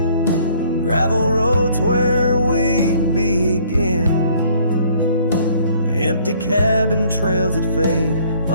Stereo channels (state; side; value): inverted; both; correlation -0.60